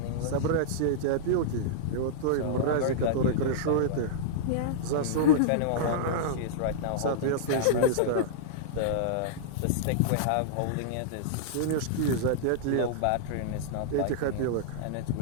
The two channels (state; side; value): different; both; correlation -0.02